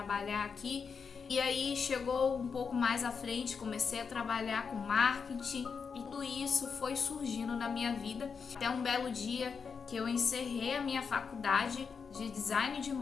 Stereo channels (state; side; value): quieter; right; 5.8 dB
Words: aqui. E aí chegou um pouco mais à frente, comecei a trabalhar com marketing. E tudo isso foi surgindo na minha vida. Até um belo dia que eu encerrei a minha faculdade de design de